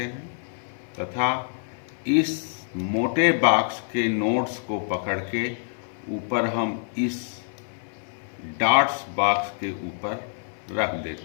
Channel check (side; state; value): right; silent; 56 dB below the other